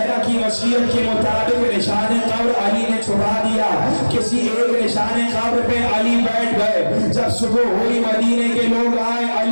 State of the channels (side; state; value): both; inverted; correlation -1.00